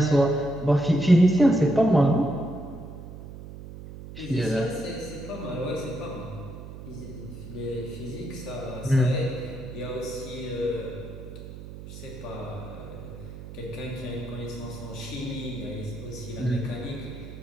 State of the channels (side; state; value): right; noise; hum, 13 dB below the sound